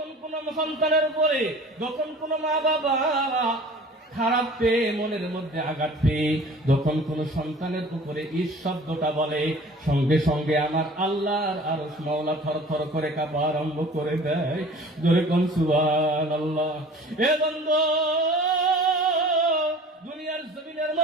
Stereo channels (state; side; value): normal; both; correlation 0.45